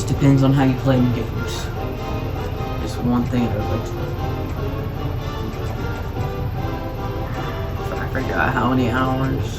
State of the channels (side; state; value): both; identical; correlation 1.00